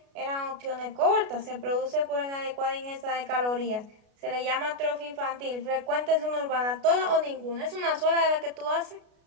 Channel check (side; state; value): left; late; 33 ms